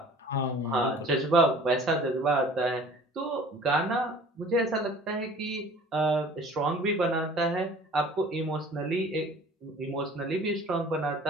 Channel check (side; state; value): both; normal; correlation 0.47